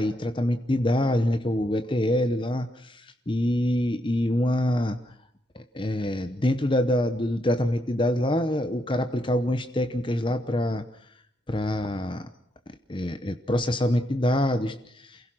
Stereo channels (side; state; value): both; normal; correlation 0.79